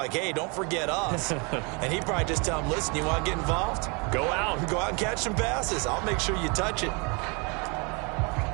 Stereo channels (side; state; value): left; quieter; 31.9 dB